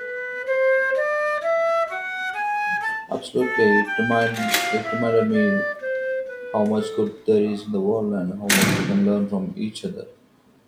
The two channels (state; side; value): identical; both; correlation 1.00